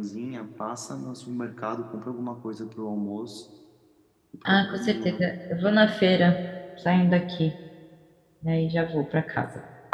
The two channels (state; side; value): identical; both; correlation 1.00